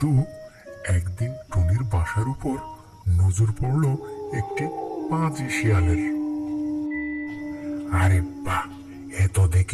একদিন টুনির বাসার উপর নজর পড়ল একটি পাজি শিয়ালের। আরে বাহ, এত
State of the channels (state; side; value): identical; both; correlation 1.00